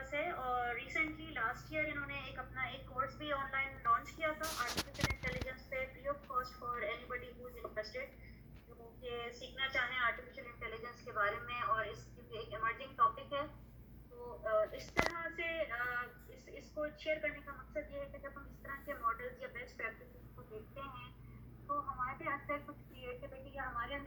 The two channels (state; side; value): identical; both; correlation 1.00